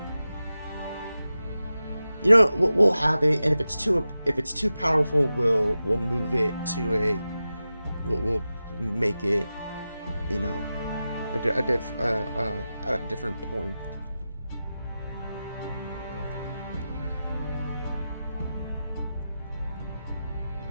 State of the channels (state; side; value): inverted; both; correlation -0.93